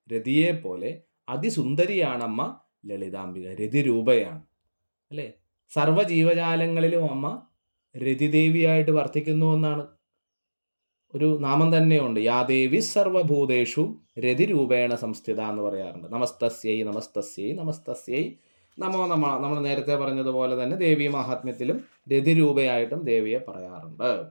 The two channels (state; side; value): inverted; both; correlation -1.00